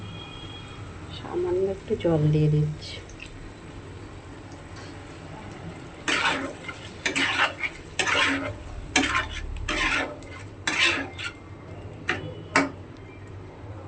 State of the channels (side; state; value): both; identical; correlation 1.00